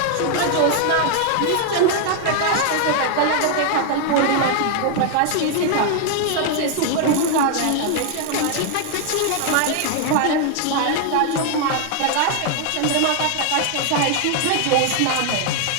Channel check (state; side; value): different; both; correlation 0.00